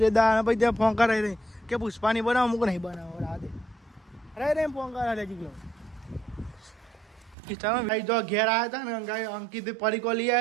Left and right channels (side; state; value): left; drops out; at 7.4 s